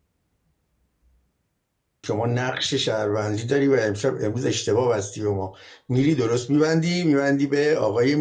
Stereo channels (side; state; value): both; identical; correlation 1.00